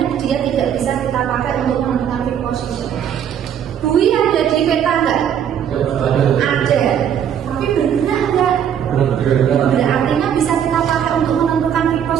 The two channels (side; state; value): left; quieter; 9.0 dB